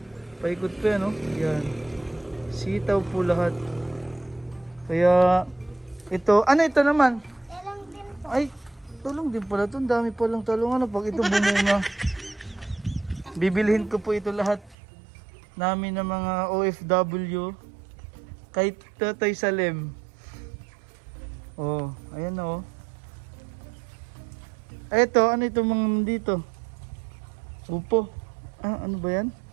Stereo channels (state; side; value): drops out; left; at 14.8 s